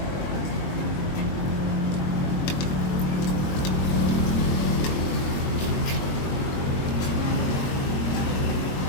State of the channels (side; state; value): right; late; 21 ms